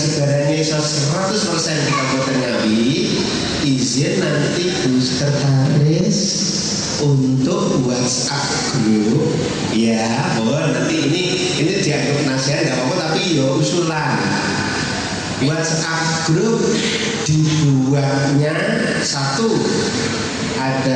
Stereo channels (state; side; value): identical; both; correlation 1.00